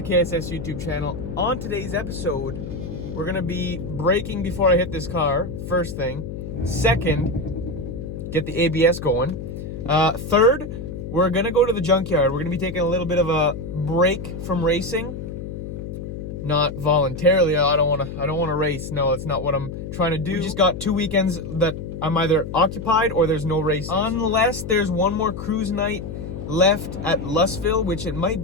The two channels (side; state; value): left; noise; hum, 8 dB below the sound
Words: KSS YouTube channel. On today's episode, we're gonna be braking before I hit this car, first thing. Second, get the ABS going. Third, we're gonna go to the junkyard. We're gonna be taking a little bit of a break from racing. Not voluntarily. I don't wanna race. No, that's not what I'm trying to do. We just got 2 weekends that I'm either occupied or there's no racing. Unless there's one more cruise night left at Lustville, which it might